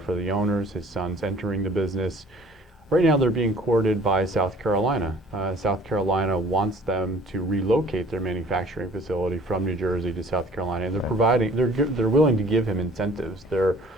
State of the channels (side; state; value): both; normal; correlation 0.53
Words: are the owners. His son's entering the business. Right now they're being courted by South Carolina. South Carolina wants them to relocate their manufacturing facility from New Jersey to South Carolina, and they're willing to give him incentives. They're